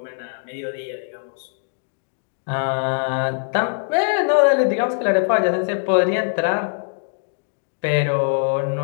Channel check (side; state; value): right; silent; 64 dB below the other